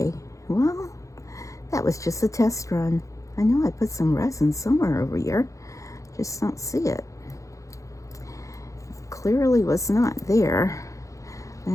well, that was just a test run. I know I put some resin somewhere over here. Just don't see it. Clearly was not there. I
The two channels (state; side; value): late; right; 0.15 ms